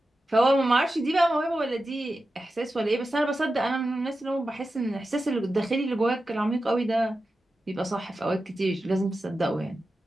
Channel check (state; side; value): normal; both; correlation 0.92